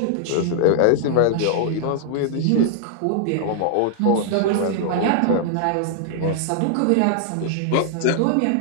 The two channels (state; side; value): different; both; correlation -0.01